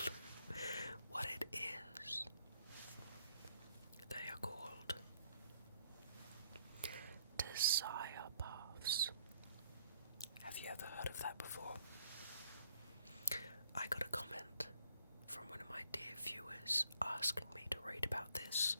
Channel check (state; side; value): inverted; both; correlation -0.64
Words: what it is. They are called desire paths. Have you ever heard of that before? I got a comment from one of my dear viewers asking me to read about this.